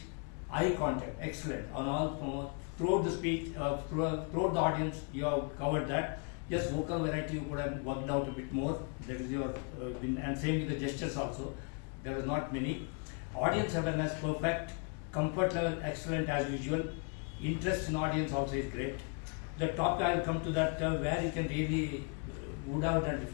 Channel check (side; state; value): right; quieter; 38.3 dB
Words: eye contact, excellent. On all throughout the speech, throughout the audience, you have covered that. Just vocal variety you could have worked out a bit more. That is your and same with the gestures also. There was not many. Audience awareness perfect. Comfort level excellent as usual. Interest in audience also is great. The topic I will come to that where you can really would have done